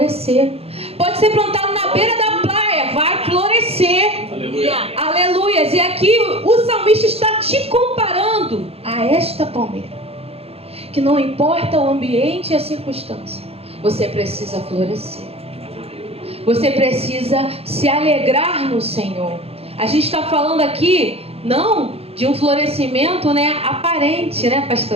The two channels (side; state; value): left; late; 0.29 ms